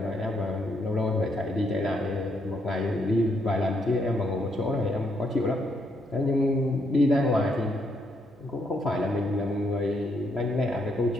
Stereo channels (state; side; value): normal; both; correlation 0.75